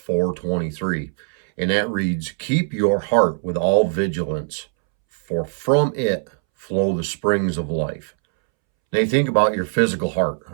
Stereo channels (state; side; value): silent; left; 65 dB below the other